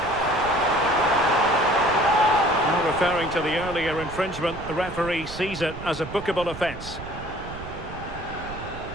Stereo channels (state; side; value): noise; right; rumble, 12 dB below the sound